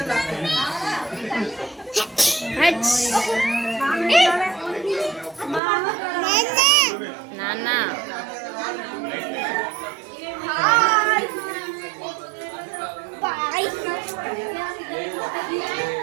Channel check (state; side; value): drops out; left; at 5.6 s